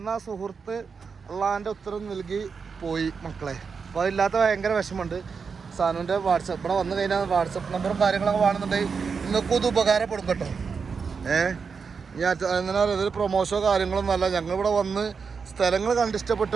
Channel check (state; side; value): quieter; left; 5.6 dB